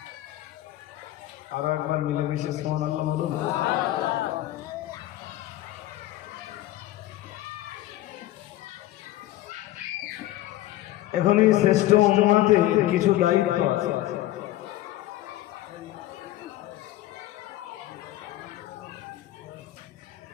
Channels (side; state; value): right; quieter; 15.2 dB